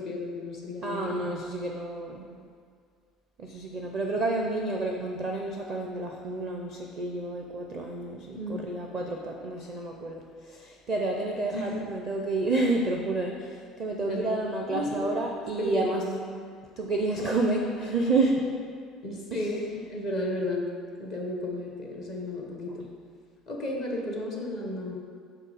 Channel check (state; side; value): normal; both; correlation 0.45